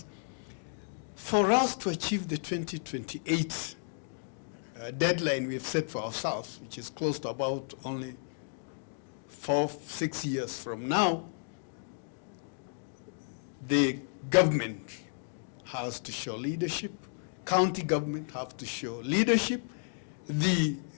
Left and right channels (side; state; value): right; silent; digital silence